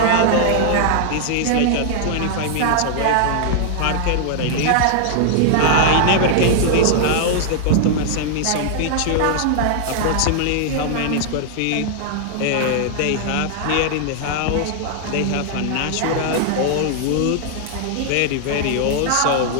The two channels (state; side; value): different; both; correlation -0.01